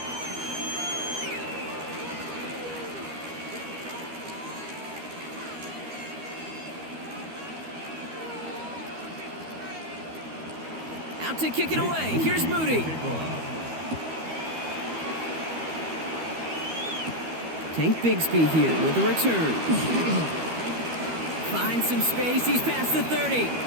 Out to kick it away. Here's Moody. Tank Bigsby here with the return. Finds some space. He's past the 30. And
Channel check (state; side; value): late; left; 13 ms